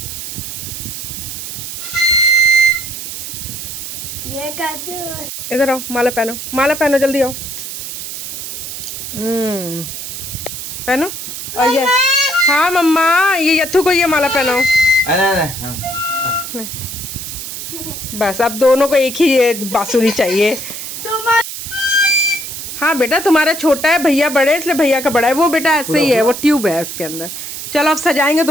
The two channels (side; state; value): right; noise; hiss, 8 dB below the sound